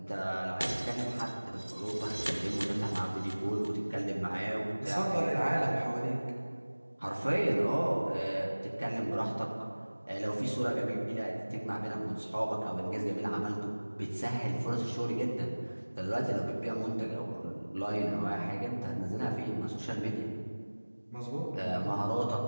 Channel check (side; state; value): both; inverted; correlation -1.00